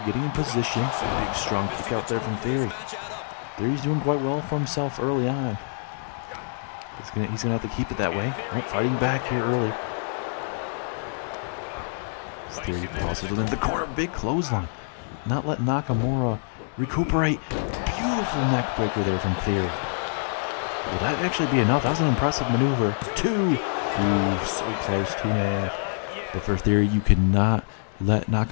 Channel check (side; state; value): right; silent; 61 dB below the other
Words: getting in position. A big strong kick out there from Theory. Theory's doing quite well for himself early on. He's gonna have to keep it that way. Oh, fighting back here early. Theory crosses within the corner. Big clothesline. Not letting Nakamura recuperate. Beautiful neck breaker there from Theory. Will that actually be enough? That was an impressive maneuver. 2. Ooh, so close. 2.5. But for Theory, you cannot let